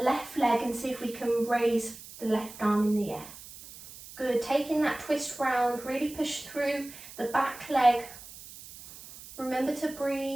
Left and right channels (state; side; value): noise; right; hiss, 16 dB below the sound